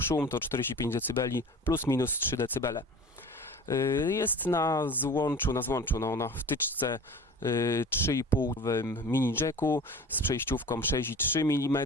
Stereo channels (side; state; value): both; normal; correlation 0.39